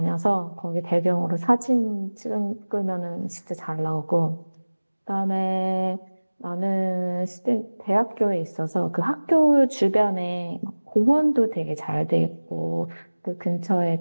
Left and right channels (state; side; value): inverted; both; correlation -1.00